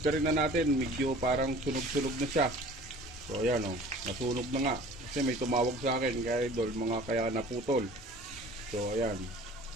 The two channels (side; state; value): both; normal; correlation 0.46